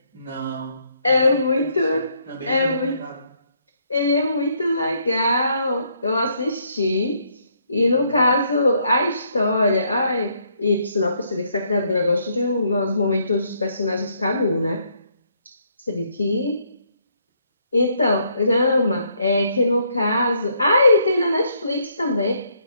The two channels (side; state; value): both; inverted; correlation -0.71